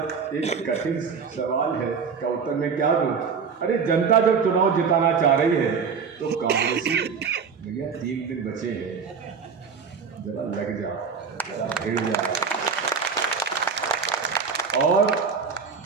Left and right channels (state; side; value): quieter; left; 5.9 dB